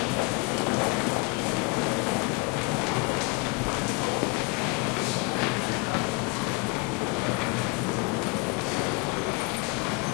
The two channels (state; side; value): quieter; right; 27.2 dB